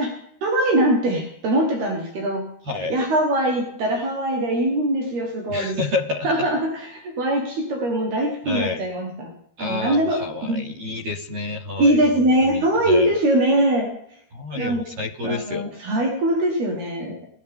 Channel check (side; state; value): left; late; 13 ms